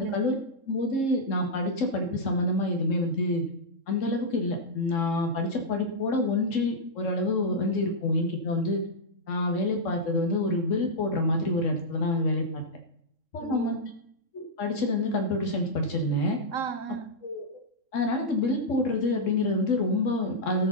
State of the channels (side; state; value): right; late; 3.7 ms